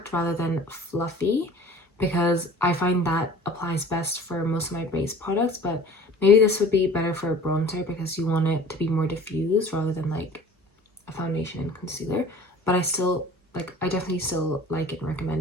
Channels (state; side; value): normal; both; correlation 0.45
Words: rather than fluffy, because I find that applies best for most of my base products, but maybe this would be better for a bronzer because you want it to be more diffused rather than like a foundation and concealer. But I definitely still like it and